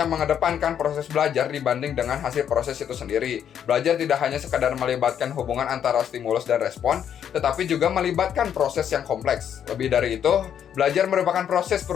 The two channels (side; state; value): right; quieter; 9.0 dB